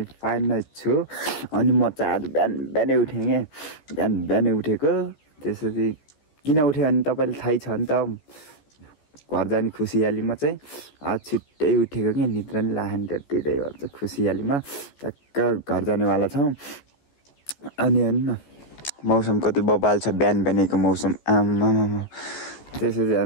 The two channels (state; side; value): late; right; 14 ms